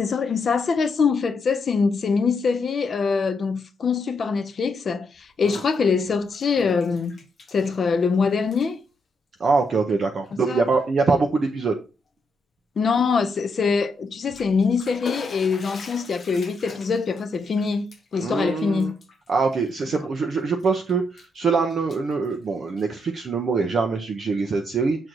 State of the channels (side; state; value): both; normal; correlation 0.78